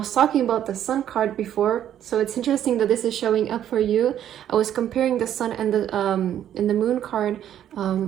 talking about the sun card before, so it's interesting that this is showing up for you. I was comparing the sun and the moon card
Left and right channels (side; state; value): left; quieter; 10.6 dB